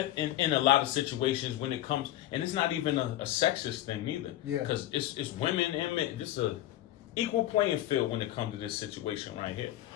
a lot of situations when it comes, and it's not even a sexist thing neither. Yeah. Because it's women and men. This is a equal playing field when it comes to this situation right here.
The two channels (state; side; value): quieter; right; 14.3 dB